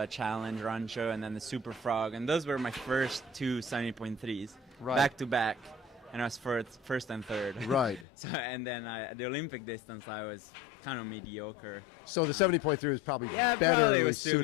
Challenge, Rancho, and then the Super Frog, and those were my first two 70.3s, back to back, and I was first and third. Right. So and then the Olympic distance, I was kind of mediocre. So the 70.3 was probably better. Probably was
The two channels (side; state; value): right; drops out; at 8.1 s